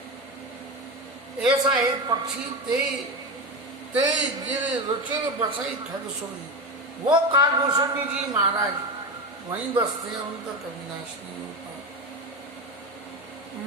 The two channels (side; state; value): both; normal; correlation 0.19